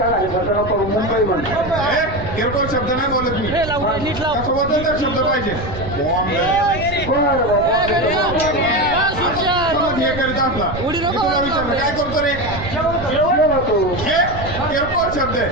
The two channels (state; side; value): noise; right; rumble, 10 dB below the sound